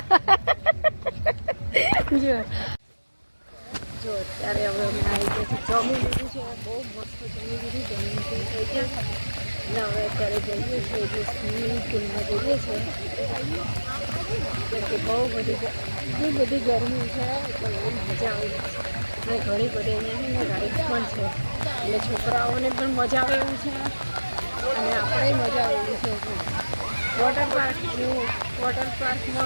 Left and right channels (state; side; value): inverted; both; correlation -1.00